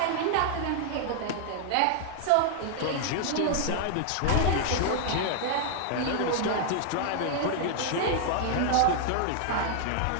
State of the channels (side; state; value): both; different; correlation -0.01